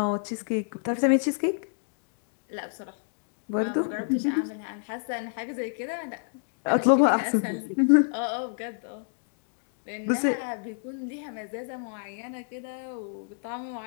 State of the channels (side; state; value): right; silent; digital silence